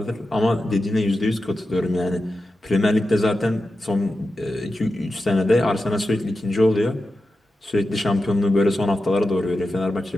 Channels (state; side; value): normal; both; correlation 0.91